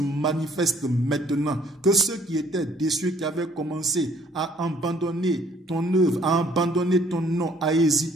maintenant, que ceux qui étaient déçus, qui avaient commencé à abandonner ton œuvre, à abandonner ton nom, à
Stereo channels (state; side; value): normal; both; correlation 0.60